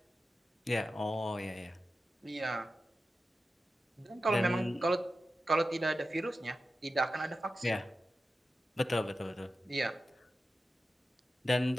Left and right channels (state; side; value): normal; both; correlation 0.92